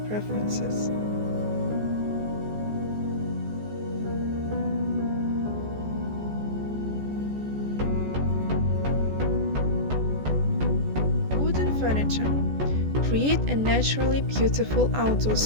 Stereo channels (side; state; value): left; late; 14 ms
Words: preferences. Wooden furniture. Create a naturally beautiful outdoor